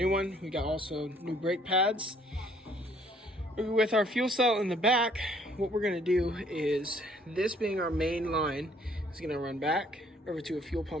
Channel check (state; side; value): normal; both; correlation 0.61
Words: one. We got also new brake pads. With our fuel cell in the back, what we're gonna do is, this being our main line, is gonna run back over to a fuel